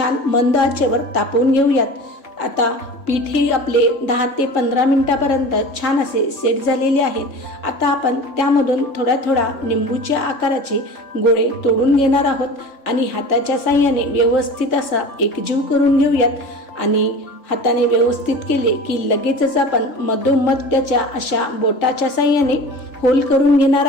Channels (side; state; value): right; late; 3.5 ms